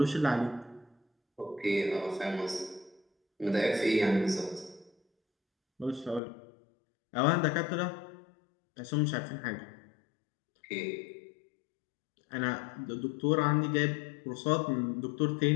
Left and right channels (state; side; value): drops out; right; at 6.2 s